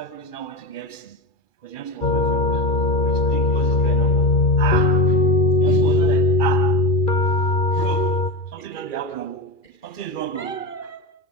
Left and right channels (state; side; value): late; right; 2.4 ms